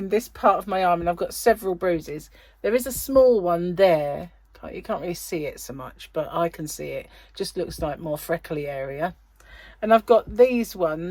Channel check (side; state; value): both; identical; correlation 1.00